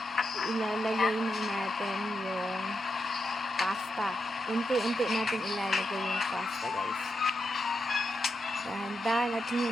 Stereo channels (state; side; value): normal; both; correlation 0.85